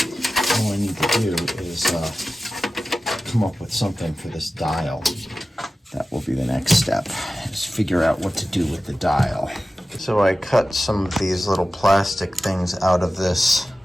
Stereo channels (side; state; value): both; normal; correlation 0.95